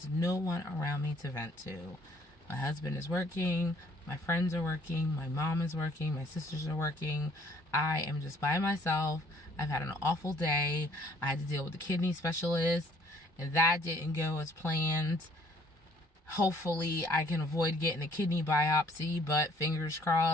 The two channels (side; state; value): both; normal; correlation 0.60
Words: no one around me to vent to. My husband is working, my friends are working, my mom is working, my sisters are working. I am just by myself. I've had an awful day. I had to deal with the kidney specialist, and that didn't go as planned. Hopefully I can avoid getting a kidney biopsy, but fingers